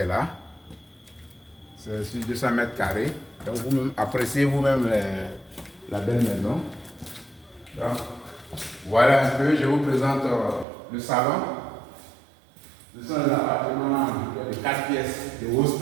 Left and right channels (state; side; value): drops out; left; at 10.7 s